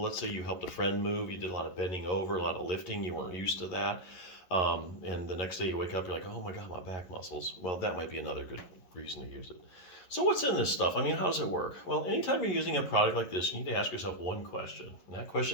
let's say you helped a friend move, you did a lot of bending over, a lot of lifting, you weren't used to that. And the next day you wake up, you're like, oh my God, my back muscles. Well, that might be another good reason to use it. So what's in this stuff? I mean, how does it work? Well, anytime you're using a product like this, you need to ask yourself one question. And that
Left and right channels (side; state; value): right; late; 11 ms